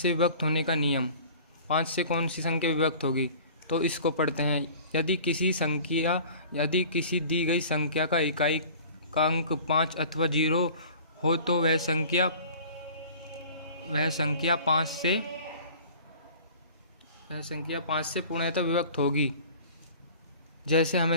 विभक्त होने का नियम। 5 से कौन सी संख्या विभक्त होगी, तो इसको पढ़ते हैं। यदि किसी दी गई संख्या का इकाई का अंक 5 अथवा 0 हो, तो वह संख्या 5 से पूर्णतः विभक्त होगी। जैसे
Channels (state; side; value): inverted; both; correlation -0.44